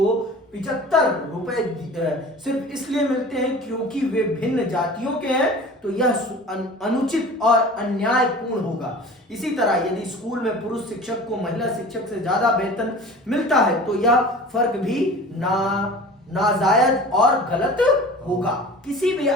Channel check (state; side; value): normal; both; correlation 0.40